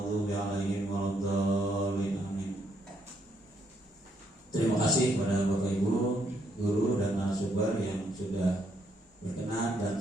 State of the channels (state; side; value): normal; both; correlation 0.73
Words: 'alaihim waladdallin. Amin. Terima kasih kepada Bapak Ibu, guru dan narasumber yang sudah berkenan dan